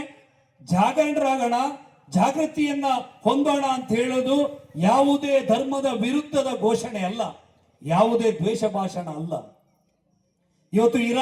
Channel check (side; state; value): both; identical; correlation 1.00